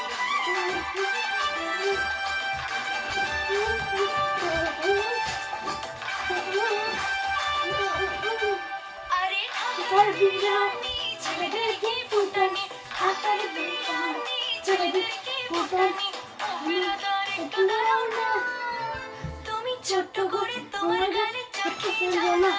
আরে হাতার বিরানি ছেলেদের কি ফুটানি হাতার বিরানি ছেলেদের কি ফুটানি একটু দাঁড়াও না তুমি ছোট্ট করে তোমার গালে চোখে ফেলবো না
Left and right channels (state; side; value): identical; both; correlation 1.00